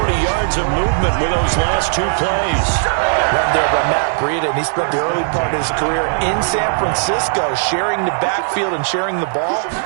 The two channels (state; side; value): silent; left; digital silence